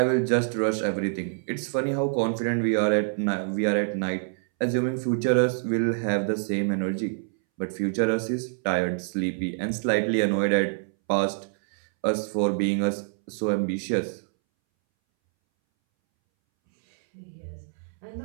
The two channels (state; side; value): silent; left; 61 dB below the other